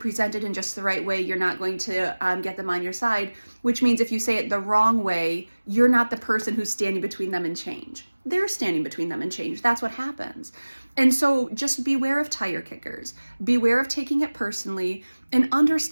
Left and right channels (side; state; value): both; inverted; correlation -1.00